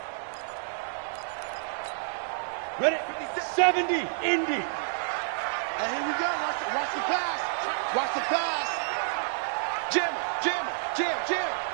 Ready? 70, Indy. And here we go. Watch the pass. Watch the pass. Jam, jam, jam, jam.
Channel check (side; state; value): left; silent; 55 dB below the other